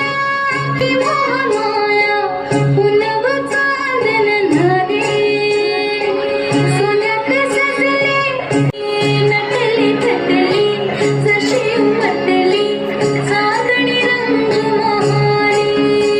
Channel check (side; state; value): both; identical; correlation 1.00